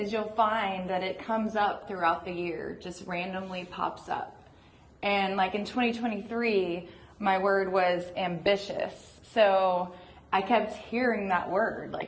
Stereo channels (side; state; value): both; identical; correlation 1.00